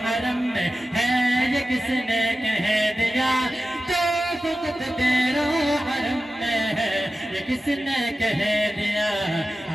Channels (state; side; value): normal; both; correlation 0.94